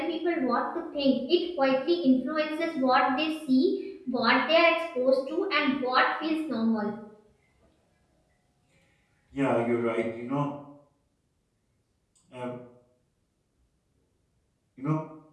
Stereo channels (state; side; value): identical; both; correlation 1.00